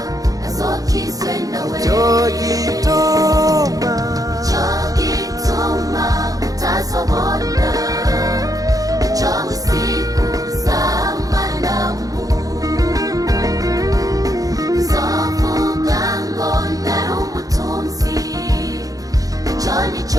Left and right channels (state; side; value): late; left; 0.17 ms